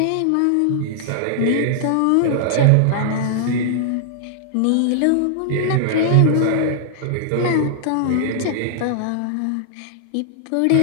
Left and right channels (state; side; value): different; both; correlation -0.01